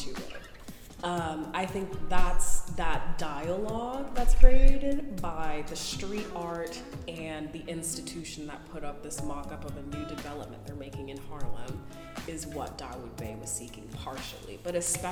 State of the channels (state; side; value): identical; both; correlation 1.00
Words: it. I think that's that dialogue that's created by the street art and the institution that put up this mock-up of a new development they're making in Harlem is what Dawoud Bey was seeking partially, but